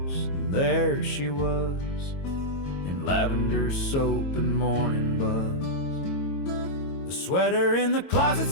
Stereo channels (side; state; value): right; late; 22 ms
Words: and there she was, in lavender soap and morning buzz. The sweater in the closet